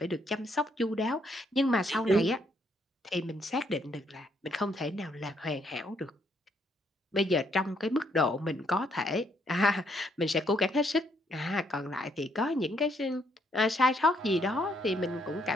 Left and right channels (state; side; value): normal; both; correlation 0.72